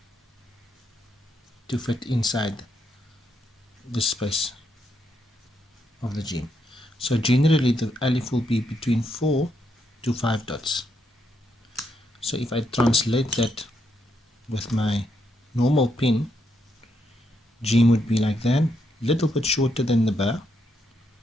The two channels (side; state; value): both; normal; correlation 0.78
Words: to fit inside the space of the jeem. So generally the alif will be between 4 to 5 dots. So if I translate that with my normal pen, jeem would be like that, little bit shorter than the ba,